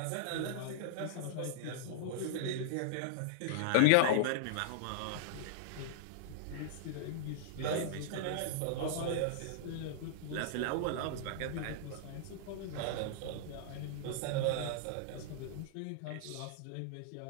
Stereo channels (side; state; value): both; different; correlation -0.01